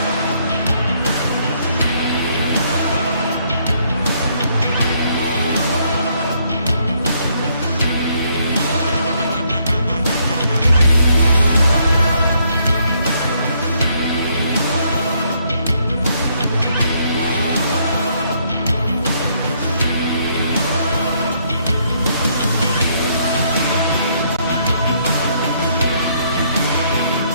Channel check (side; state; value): both; inverted; correlation -0.70